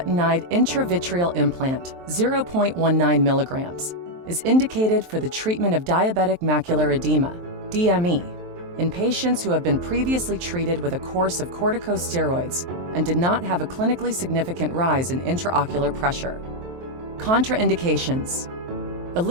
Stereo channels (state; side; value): late; left; 23 ms